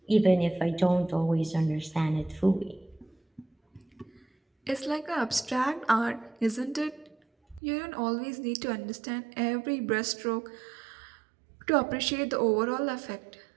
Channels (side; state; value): left; drops out; at 7.6 s